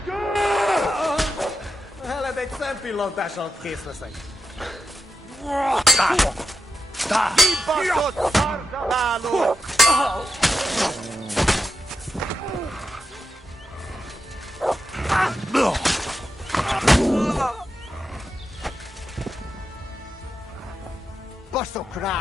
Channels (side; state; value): both; normal; correlation 0.88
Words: Heled egy szempillantás alatt kész leszek. Kibaszott szarzsaváló! Baszok